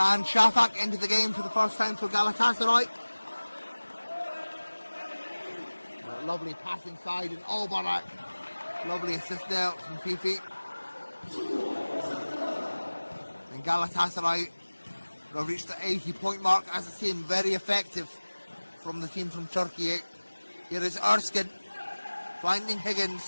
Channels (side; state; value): both; inverted; correlation -1.00